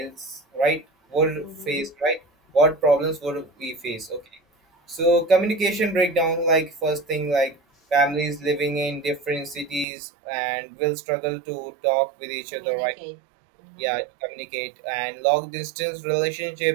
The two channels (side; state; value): left; drops out; at 9.9 s